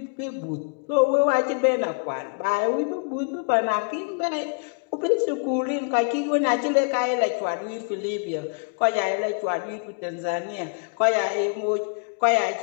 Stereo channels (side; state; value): right; quieter; 36.8 dB